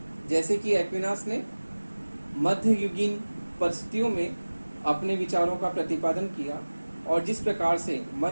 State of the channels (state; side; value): inverted; both; correlation -1.00